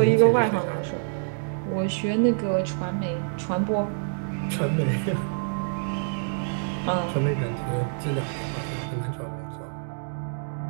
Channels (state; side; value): silent; left; digital silence